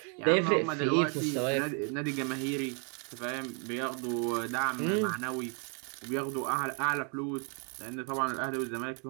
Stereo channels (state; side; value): quieter; left; 38.9 dB